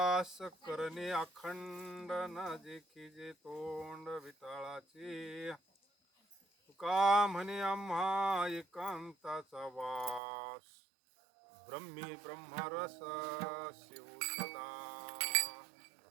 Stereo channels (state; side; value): drops out; left; at 10.2 s